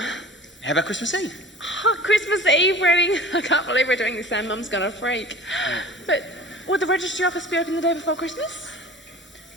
How about Christmas Eve? Oh, Christmas Eve wedding. I can't believe we're doing this and Mum's gonna freak. But would the registry office be open the day before Christmas?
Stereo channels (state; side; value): normal; both; correlation 0.41